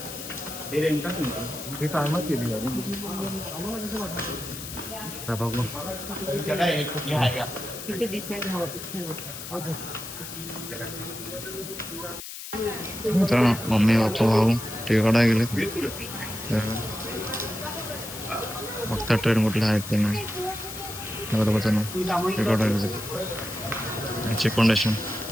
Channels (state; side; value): noise; left; hiss, 10 dB below the sound